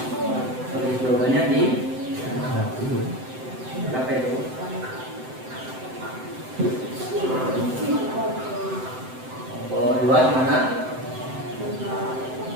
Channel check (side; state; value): left; late; 7.8 ms